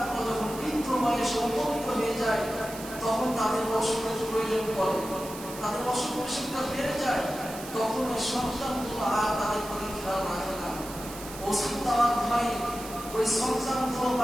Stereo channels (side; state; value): right; noise; hiss, 13 dB below the sound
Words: যখন বৃদ্ধ বয়সে উপনীত হয়ে যায়, তখন তাদের অসুখের প্রয়োজন পড়ে, তাদের অসুখ বিসুখটা বেড়ে যায়, তখন ওই সন্তানগুলো আর তাদের প্রতি খেয়াল রাখে না। ওষুধ দেওয়ার ভয়ে ওই সন্তানগুলো